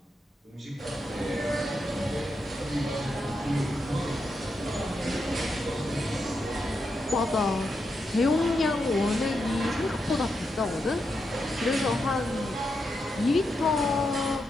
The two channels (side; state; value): both; normal; correlation 0.84